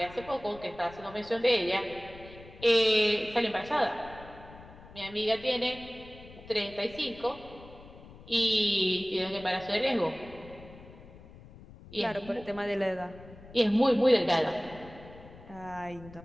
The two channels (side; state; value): left; noise; rumble, 19 dB below the sound